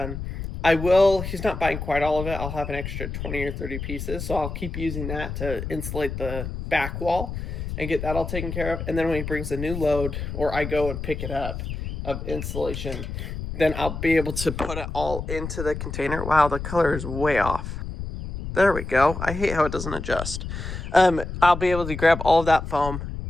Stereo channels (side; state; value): left; noise; rumble, 6 dB below the sound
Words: He's not buying quite all of it. I'll have an extra 20 or 30 pieces. So I'll keep using that to insulate the back wall and get that all taken care of. And then when he brings a new load, or I go and pick it up of insulation, then I'll be able to put it all into the container. Wow, the color is way off. There we go. I hate how it doesn't adjust. I'll be able to grab all of that foam,